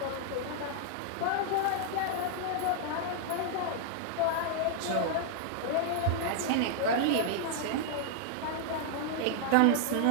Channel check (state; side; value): different; both; correlation -0.01